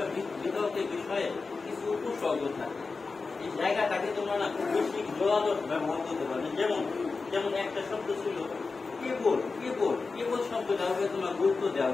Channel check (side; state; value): right; quieter; 4.2 dB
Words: বিতর্কের বিষয়ে কিছু উপসর্গ থাকে, এই জায়গাটাকে তোমরা না খুব বেশি জোরালো ব্যবহার করতে পারবে। যেমন একটা শব্দ ছিল কেবল, কেবল কেবল শব্দটা হবে তোমরা গুরুত্ব